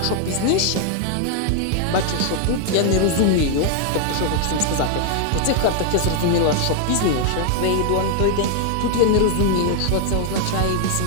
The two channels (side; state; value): both; different; correlation 0.00